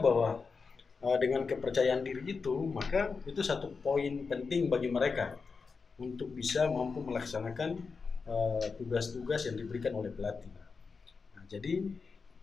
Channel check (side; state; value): right; quieter; 4.9 dB